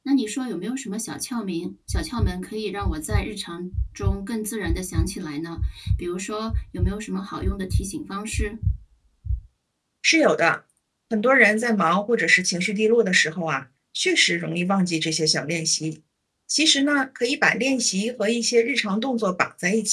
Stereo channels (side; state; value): both; identical; correlation 1.00